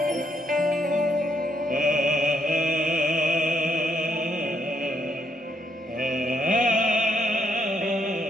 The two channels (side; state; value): both; normal; correlation 0.74